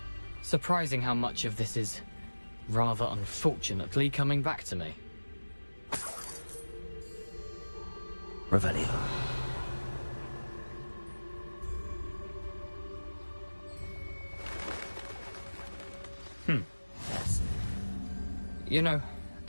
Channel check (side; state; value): both; inverted; correlation -1.00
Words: Surprising how much of this is, rather unfortunately, coming back to me. Revelio. Yes. You know,